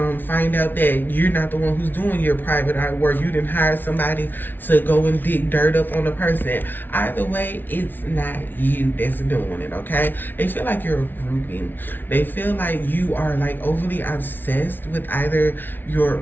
find out that you're not the one who's doing your private eye work. You didn't hire somebody to go and dig dirt up on the person. Either way, it's not you that's doing it, okay? They feel like you're a groupie. They feel like you are like overly obsessed with either your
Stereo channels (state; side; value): late; right; 0.092 ms